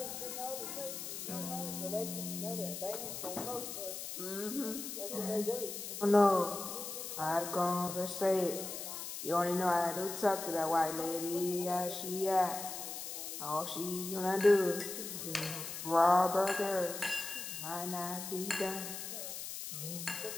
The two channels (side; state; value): left; noise; hiss, 7 dB below the sound